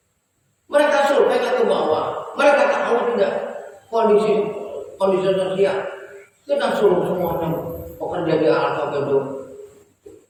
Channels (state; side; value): identical; both; correlation 1.00